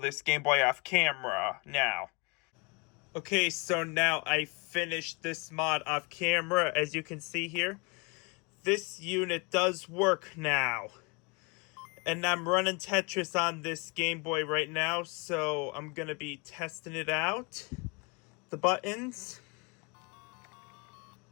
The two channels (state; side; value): quieter; right; 29.7 dB